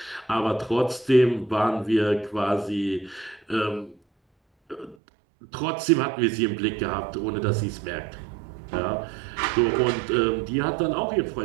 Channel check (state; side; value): drops out; left; at 5.0 s